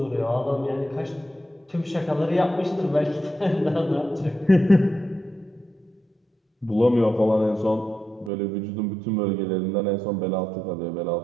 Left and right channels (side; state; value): left; drops out; at 8.3 s